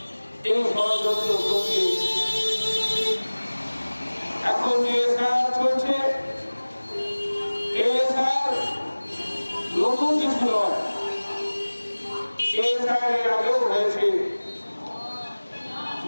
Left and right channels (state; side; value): inverted; both; correlation -1.00